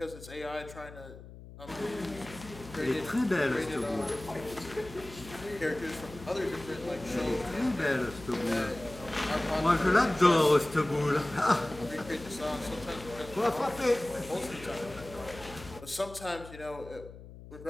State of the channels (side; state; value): left; noise; hum, 16 dB below the sound